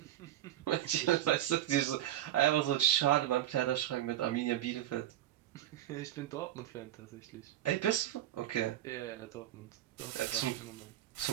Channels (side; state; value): left; quieter; 12.9 dB